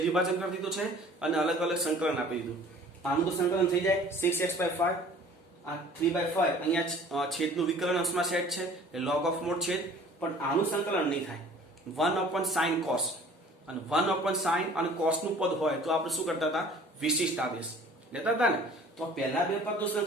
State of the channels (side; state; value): both; normal; correlation 0.49